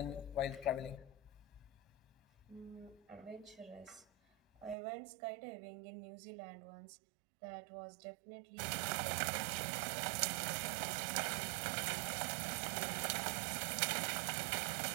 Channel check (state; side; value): drops out; left; at 4.8 s